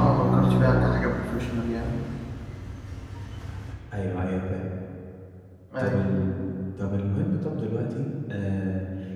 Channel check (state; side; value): identical; both; correlation 1.00